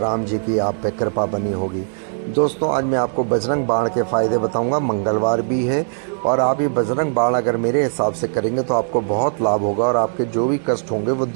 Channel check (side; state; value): left; silent; digital silence